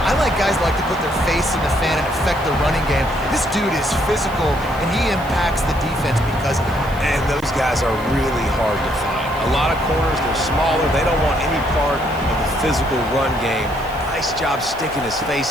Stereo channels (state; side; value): noise; right; hiss, 22 dB below the sound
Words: I like guys that like to put their face in the fan and affect the running game. This dude is physical, and he impacts the defense because of it. And those guys are really hard to find. A lot of corners, they're smaller. They don't want any part of the physical run game. Nice job sticking his